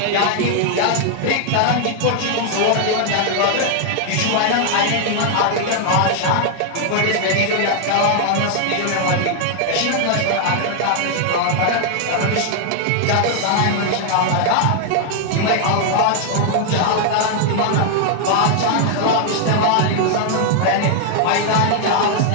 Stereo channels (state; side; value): different; both; correlation 0.00